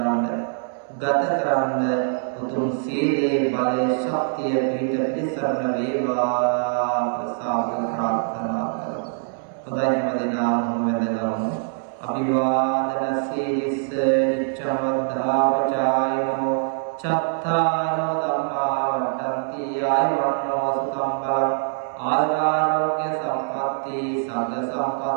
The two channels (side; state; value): left; silent; 63 dB below the other